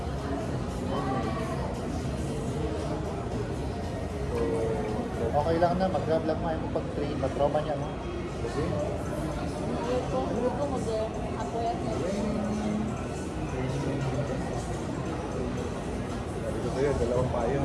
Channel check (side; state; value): both; identical; correlation 1.00